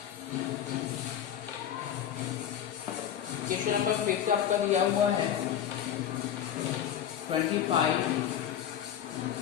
क्वेश्चन नंबर 5 आपका दिया हुआ है 25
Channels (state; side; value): quieter; right; 9.9 dB